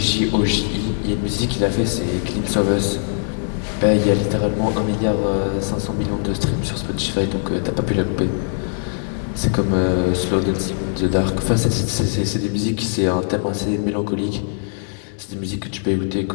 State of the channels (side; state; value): right; silent; digital silence